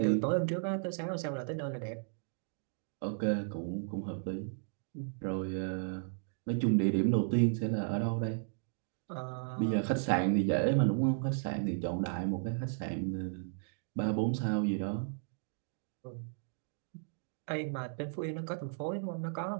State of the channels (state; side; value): silent; left; digital silence